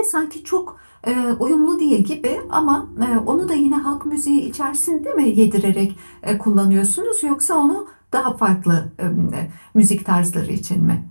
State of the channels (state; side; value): inverted; both; correlation -1.00